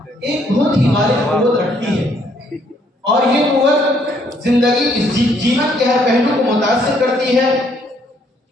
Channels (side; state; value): both; normal; correlation 0.68